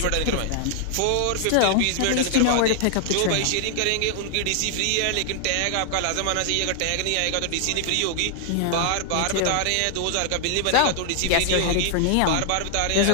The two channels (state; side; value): different; both; correlation 0.00